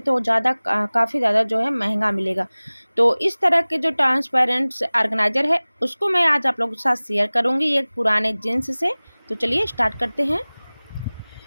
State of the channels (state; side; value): inverted; both; correlation -1.00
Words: काफ़ी ज़्यादा जो है महंगा मिलेगा। तो इस तरह के जो ट्रांसपेरेंट ऑर्गेनाइज़र है उसको मैं आज आप लोगों के साथ शेयर करूँगी एक पुराने जीन्स से। तो चलिए स्टार्ट करते हैं।